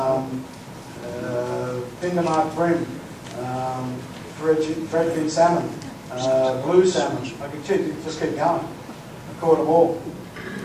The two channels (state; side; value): identical; both; correlation 1.00